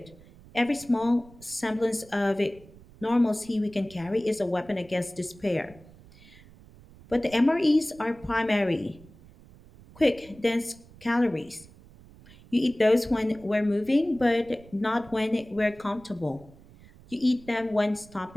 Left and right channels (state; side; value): noise; right; rumble, 23 dB below the sound